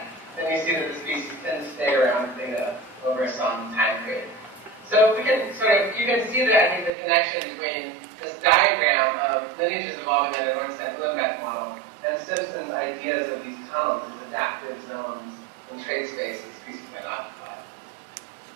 and you see that the species tend to stay around theta over some time period. So we can you can see that, I think, the connection between this diagram of lineages evolving in an Ornstein-Uhlenbeck model and Simpson's ideas of these tunnels and adaptive zones in trait space that species might occupy.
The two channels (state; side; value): drops out; left; at 6.9 s